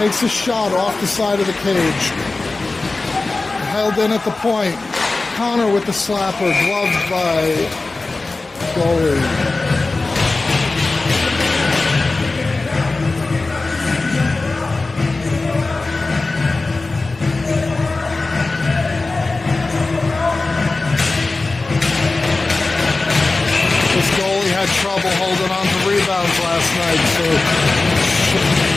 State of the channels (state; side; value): quieter; right; 3.4 dB